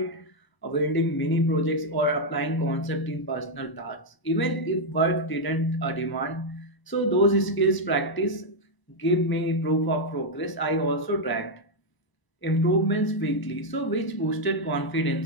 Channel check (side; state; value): right; late; 1.0 ms